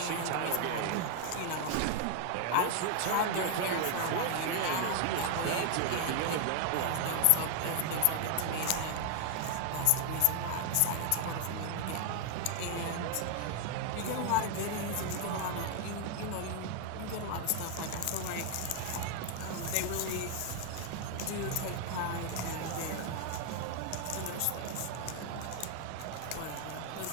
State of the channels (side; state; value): both; different; correlation 0.00